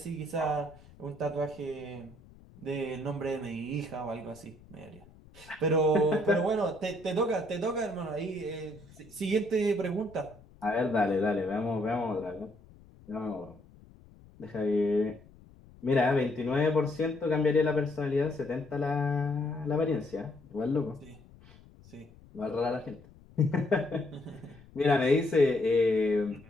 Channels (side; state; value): left; noise; rumble, 24 dB below the sound